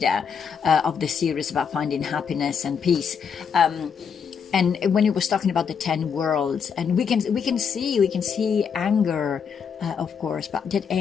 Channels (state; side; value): quieter; right; 6.7 dB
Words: of the series about finding happiness and peace. And when he was talking about the 10 worlds, and we can see anger, of course, but that